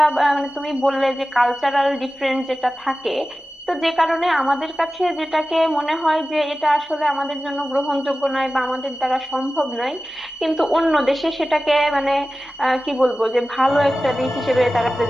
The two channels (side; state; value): both; normal; correlation 0.95